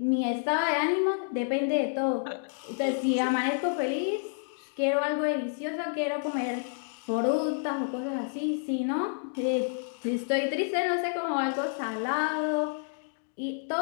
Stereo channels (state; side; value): silent; right; digital silence